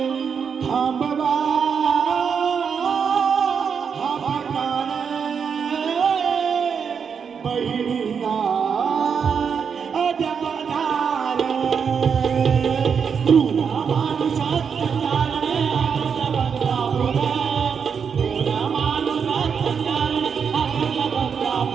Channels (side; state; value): left; quieter; 6.6 dB